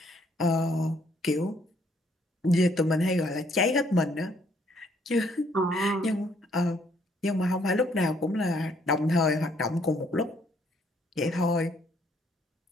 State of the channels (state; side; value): normal; both; correlation 0.67